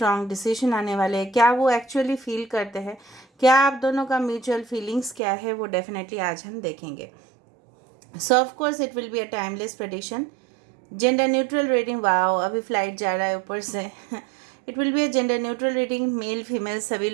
डिसीजन आने वाले हैं, क्या वो एक्चुअली फील करते हैं, क्या आप दोनों का म्यूचुअल फीलिंग्स क्या है, वो डेफिनेटली आज हम देखेंगे। सो of course it will be a timeless prediction. Gender neutral reading, wow अभी फ्लाइट जा रहा है ऊपर से। It will be a gender neutral reading, male female सभी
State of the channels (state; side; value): drops out; left; at 5.2 s